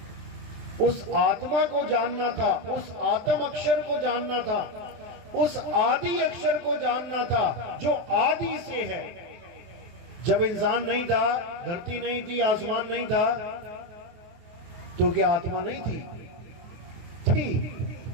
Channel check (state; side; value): late; left; 23 ms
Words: उस आत्मा को जानना था, उस आत्म अक्षर को जानना था, उस आदि अक्षर को जानना था जो आदि से है। जब इंसान नहीं था, धरती नहीं थी, आसमान नहीं था, तो क्या आत्मा नहीं थी? थी।